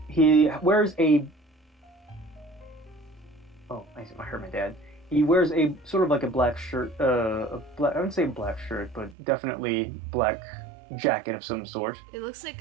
He wears a I heard my dad. He wears a sort of like a black shirt, I wouldn't say black shirt, but definitely black jacket of some sort. It looks like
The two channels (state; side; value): drops out; left; at 9.2 s